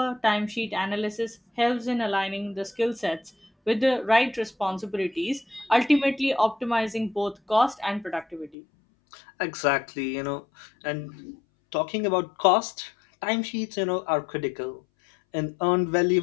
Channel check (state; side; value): drops out; right; at 8.6 s